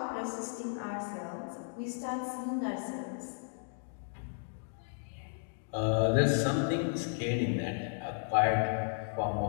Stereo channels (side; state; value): right; silent; digital silence